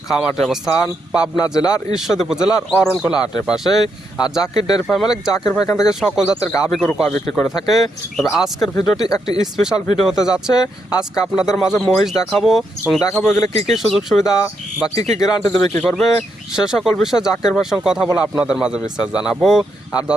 খামারটির অবস্থান পাবনা জেলার ঈশ্বরদী উপজেলার অরণখোলা হাটের পাশে। আর জাকির ডেয়ারি ফার্ম মালিক জাকির ভাই এখান থেকে সকল জাতের গাভী গরু কয় বিক্রি করে থাকে। তবে আজকের ভিডিওটি একটি স্পেশাল ভিডিও হতে যাচ্ছে। আজকে আপনাদের মাঝে মহিষ দেখাবো এবং দেখাবো এগুলো কী কী সুযোগ সুবিধা বা কী কী গ্যারান্টি দেবে কী করবে সে সকল বিষয়ে জাকির ভাইয়ের সঙ্গে কথা বলে আপনাদের মাঝে বিস্তার জানাবো। আর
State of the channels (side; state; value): both; normal; correlation 0.80